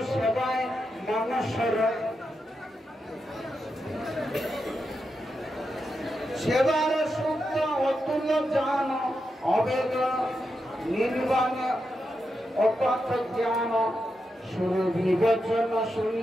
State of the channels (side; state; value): both; normal; correlation 0.87